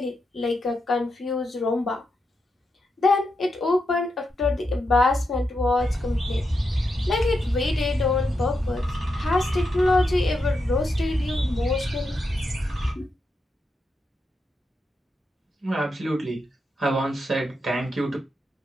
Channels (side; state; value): both; normal; correlation 0.85